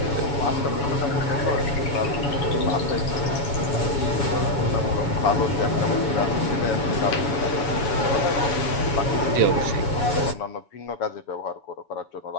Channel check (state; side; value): late; right; 7.1 ms